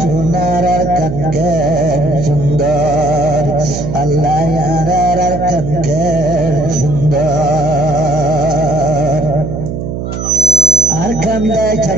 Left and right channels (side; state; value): right; noise; hum, 5 dB below the sound